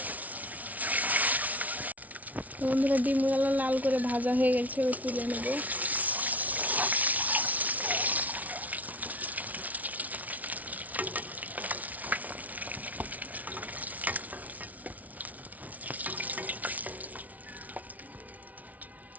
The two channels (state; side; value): late; left; 0.073 ms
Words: তো বন্ধুরা, ডিমগুলো লাল করে ভাজা হয়ে গেছে, তুলে নেব।